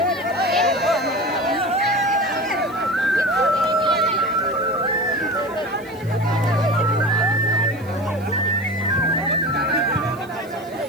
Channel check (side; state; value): right; noise; hiss, 25 dB below the sound